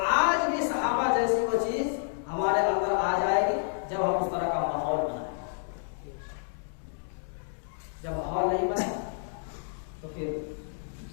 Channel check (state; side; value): silent; right; digital silence